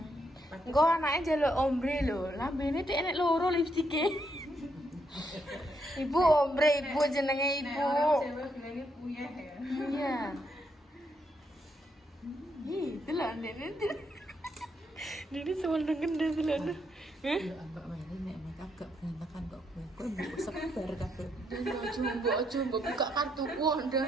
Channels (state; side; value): normal; both; correlation 0.77